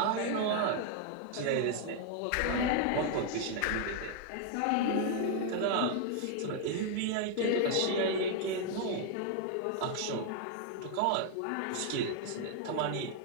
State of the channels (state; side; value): different; both; correlation 0.00